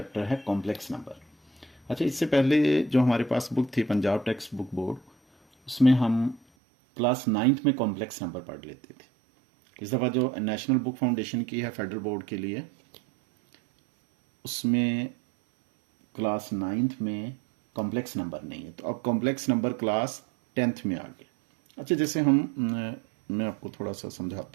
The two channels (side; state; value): left; drops out; at 6.4 s